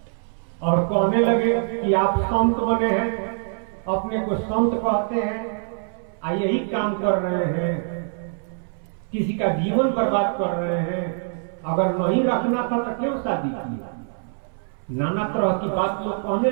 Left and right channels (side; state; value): left; silent; 63 dB below the other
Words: और कहने लगे कि आप संत बने हैं, अपने को संत कहते हैं, यही काम कर रहे हैं, किसी का जीवन बर्बाद कर रहे हैं, अगर नहीं रखना था तो क्यों शादी की। नाना तरह की बात लोग कहने